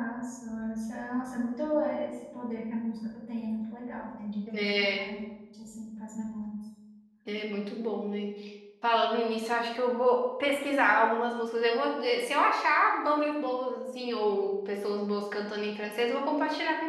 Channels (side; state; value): both; identical; correlation 1.00